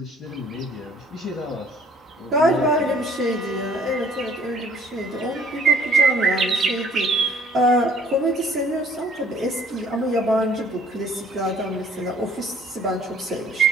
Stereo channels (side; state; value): both; normal; correlation 0.57